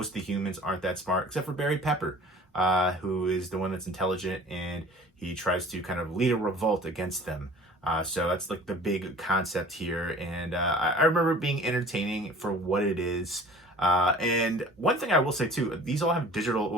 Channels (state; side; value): normal; both; correlation 0.46